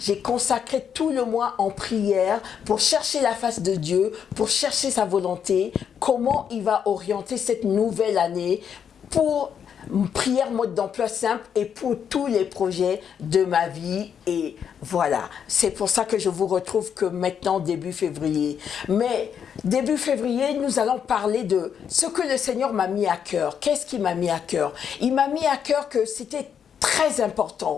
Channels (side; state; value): right; quieter; 7.9 dB